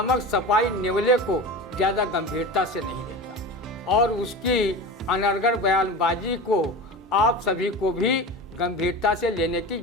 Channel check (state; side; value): normal; both; correlation 0.30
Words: सपाई नेवले को ज़्यादा गंभीरता से नहीं लेता और उसकी अनर्गल बयानबाजी को आप सभी को भी गंभीरता से लेने की